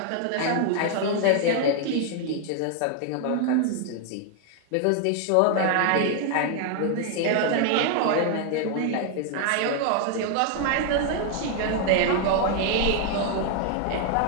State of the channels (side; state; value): both; different; correlation 0.00